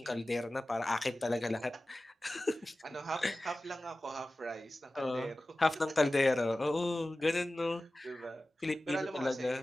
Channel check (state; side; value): normal; both; correlation 0.96